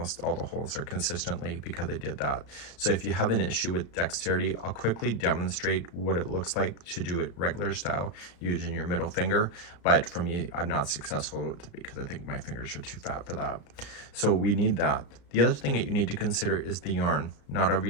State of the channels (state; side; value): late; right; 34 ms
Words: all the holes are consistently because I did that. So if you have an issue with dexterity, I'll quickly demonstrate what it looks like to do it regular style using your middle finger, but for me, I'm not successful with it because I think my fingers are too fat for that. So we need that. The other thing that you need to consider is the yarn. Not every